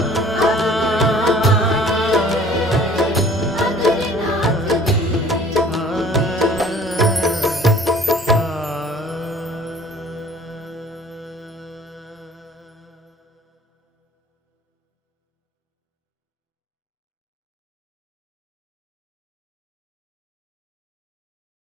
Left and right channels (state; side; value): normal; both; correlation 0.50